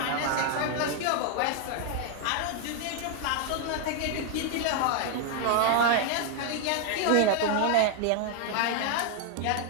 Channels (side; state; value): both; different; correlation 0.00